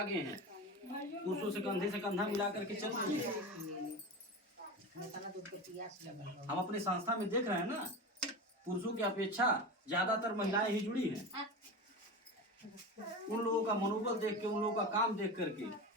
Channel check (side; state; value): both; normal; correlation 0.26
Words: हैं, पुरुषों से कंधे से कंधा मिला करके चल रही है। हम अपनी संस्था में देख रहे हैं ना, पुरुषों की अपेक्षा ज्यादातर महिलाएं ही जुड़ी हैं। उन लोगों का मनोबल देख के, उन लोगों का काम देख करके